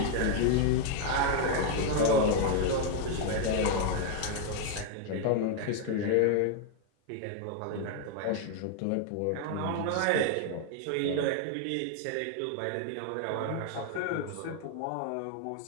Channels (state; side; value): different; both; correlation 0.00